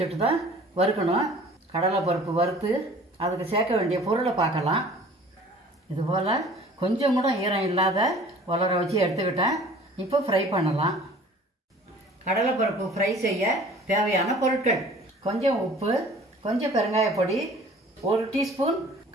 தான் வறுக்கணும். கடலைப்பருப்பு வறுத்து அதுக்கு சேர்க்க வேண்டிய பொருளை பார்க்கலாம். இதுபோல் கொஞ்சம் கூட ஈரம் இல்லாத உலர வச்சு எடுத்துக்கிட்டேன். இப்போ ஃப்ரை பண்ணலாம். கடலைப்பருப்பு ஃப்ரை செய்ய தேவையான பொருட்கள்: கொஞ்சம் உப்பு, கொஞ்சம் பெருங்காயப்பொடி, 1 டீஸ்பூன்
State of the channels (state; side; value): normal; both; correlation 0.48